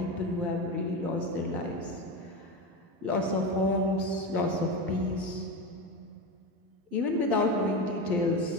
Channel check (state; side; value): late; left; 12 ms